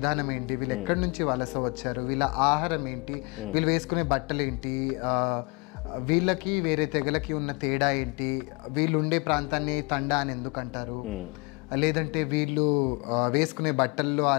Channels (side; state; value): right; quieter; 29.2 dB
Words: ఏంటి, వీళ్ళు ఎక్కడి నుంచి వలస వచ్చారు, వీళ్ళ ఆహారం ఏంటి, వీళ్ళు వేసుకునే బట్టలు ఏంటి, వీళ్ళకి వేరే తెగలకి ఉన్న తేడా ఏంటి, వీళ్ళు ఉండే ప్రాంతాన్ని తండా అని ఎందుకు అంటారు, లేదంటే వీళ్ళు వేసుకునే బట్టల్లో ఆ